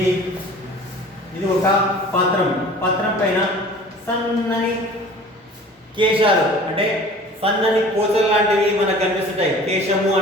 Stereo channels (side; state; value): both; normal; correlation 0.44